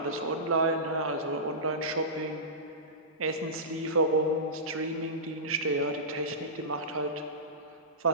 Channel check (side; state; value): both; normal; correlation -0.20